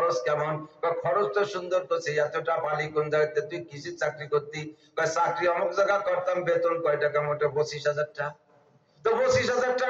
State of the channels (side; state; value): both; identical; correlation 1.00